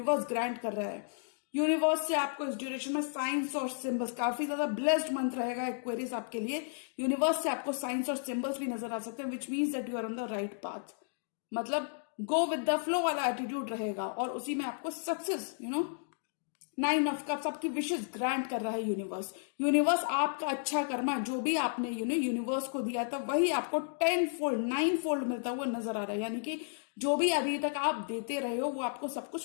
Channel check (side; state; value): right; silent; digital silence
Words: ग्रांट कर रहा है। यूनिवर्स से आपको इस ड्यूरेशन में साइंस और सिंबल्स, काफी ज्यादा ब्लेस्ड मंथ रहेगा एक्वेरियस आपके लिए। यूनिवर्स से आपको साइंस और सिंबल्स भी नजर आ सकते हैं, which means that you are on the right path. मतलब गो विद द फ्लो वाला एटीट्यूड रहेगा और उसी में आपको सक्सेस 9 ऑफ कप्स, आपकी विशेष ग्रांट कर रहा है यूनिवर्स। यूनिवर्स आपका अच्छा कर्मा जो भी आपने यूनिवर्स को दिया था वही आपको 10 फोल्ड 9 फोल्ड मिलता हुआ नजर आ रहा है। यानी कि जो भी अभी तक आप देते रहे हो वो आपको सब